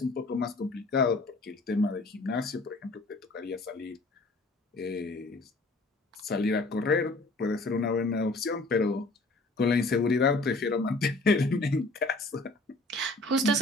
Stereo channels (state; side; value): quieter; right; 3.0 dB